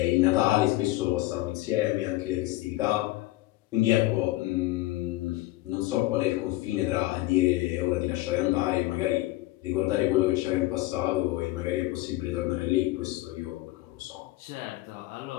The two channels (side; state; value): right; quieter; 18.0 dB